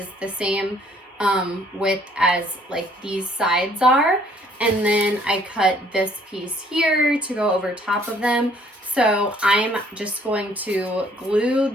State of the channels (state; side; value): normal; both; correlation 0.61